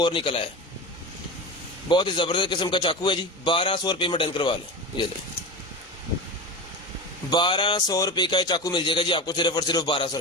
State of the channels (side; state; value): both; normal; correlation 0.26